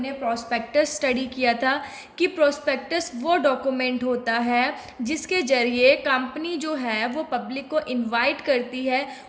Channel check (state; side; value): identical; both; correlation 1.00